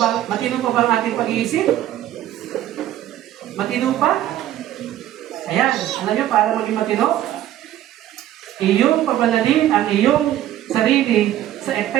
ba? Matino pa ba ang ating pag-iisip? Matino pa? Ayan, alam niyo, para maging matino, iyong pabanalin ang iyong sarili sa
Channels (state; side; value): quieter; left; 12.8 dB